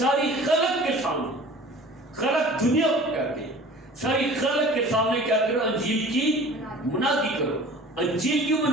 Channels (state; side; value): normal; both; correlation 0.44